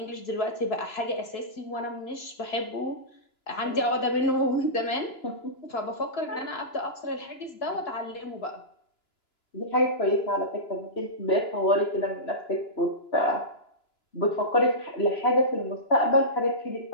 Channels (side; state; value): right; late; 2.9 ms